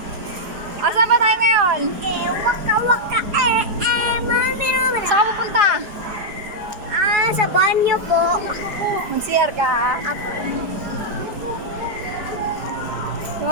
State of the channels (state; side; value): late; left; 4.9 ms